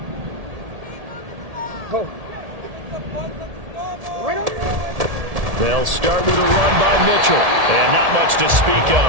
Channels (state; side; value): late; left; 1.7 ms